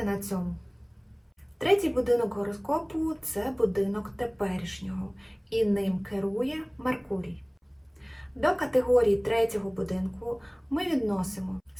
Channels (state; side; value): identical; both; correlation 1.00